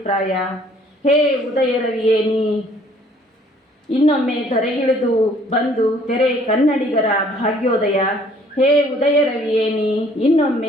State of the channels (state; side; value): normal; both; correlation 0.59